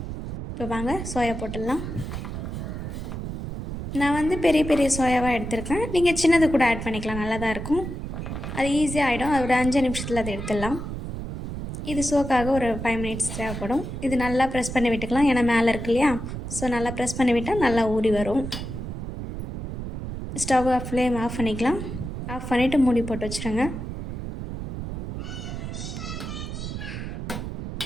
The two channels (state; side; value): noise; right; rumble, 6 dB below the sound